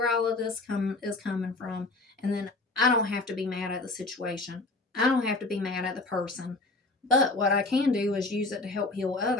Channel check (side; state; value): right; quieter; 3.2 dB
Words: all of this is coming from. And then I don't have to be mad at the situation. I don't have to be mad at the person. But what I can do is use it to help heal